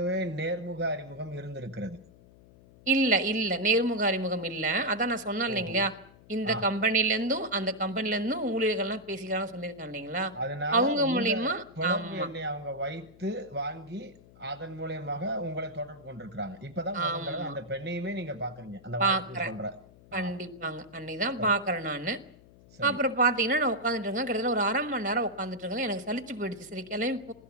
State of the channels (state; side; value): noise; left; hum, 24 dB below the sound